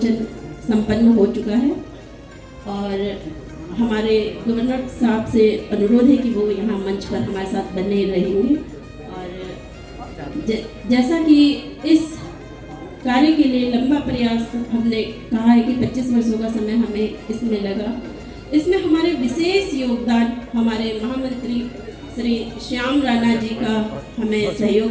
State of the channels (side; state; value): both; identical; correlation 1.00